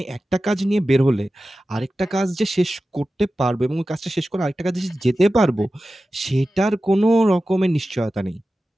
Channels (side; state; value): both; normal; correlation 0.94